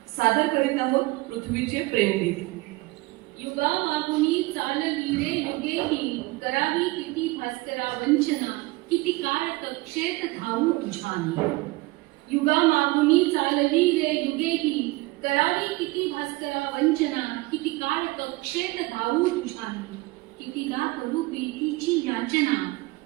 सादर करीत आहोत पृथ्वीचे प्रेमगीत. युगा मागुनी चालली रे युगेही, करावी किती भास्करा वंचना, किती काळ कक्षेत धावू तुझ्यानी. युगा मागुनी चालली रे युगेही, करावी किती भास्करा वंचना, किती काळ कक्षेत धावू तुझ्यानी. कितीदा करू प्रीतीची याचना,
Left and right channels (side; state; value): left; quieter; 21.9 dB